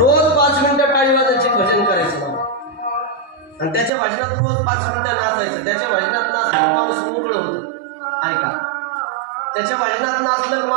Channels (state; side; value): drops out; left; at 3.9 s